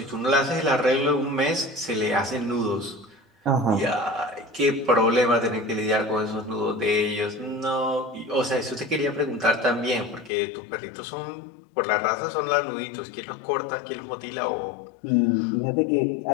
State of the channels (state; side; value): drops out; right; at 10.3 s